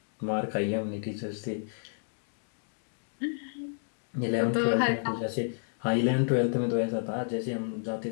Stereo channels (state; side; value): silent; right; digital silence